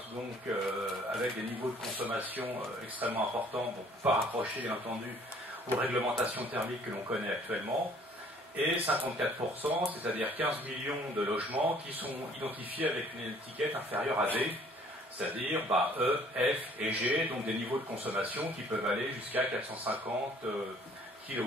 donc avec des niveaux de consommation extrêmement importants, donc pas rapprochés bien entendu aux réglementations thermiques que l'on connaît actuellement, et 54%, c'est-à-dire 15 millions de logements qui sont identifiés avec une étiquette inférieure à D, c'est-à-dire E, F et G, donc des niveaux de consommation qui peuvent aller jusqu'à 450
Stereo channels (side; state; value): both; normal; correlation 0.57